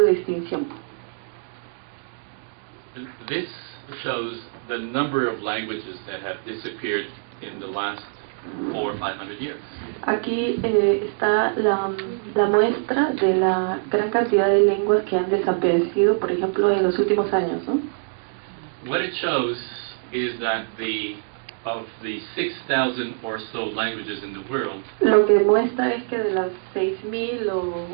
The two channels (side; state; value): left; silent; digital silence